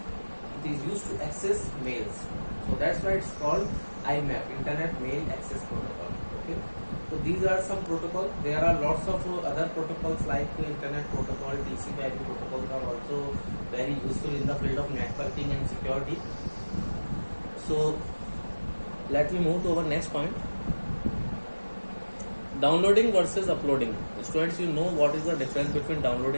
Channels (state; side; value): inverted; both; correlation -1.00